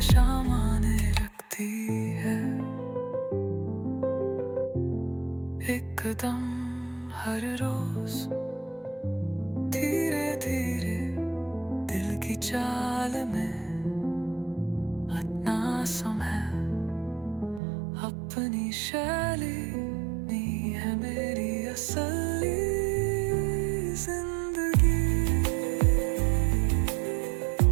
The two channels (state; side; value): drops out; left; at 17.6 s